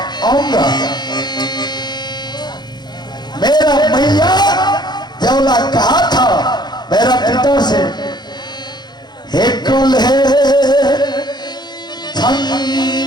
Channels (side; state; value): right; late; 0.21 ms